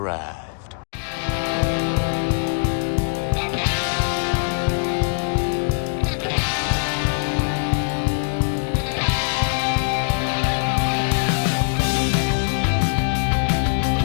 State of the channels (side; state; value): right; silent; digital silence